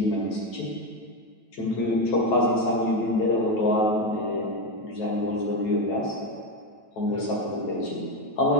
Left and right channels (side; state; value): right; late; 9.1 ms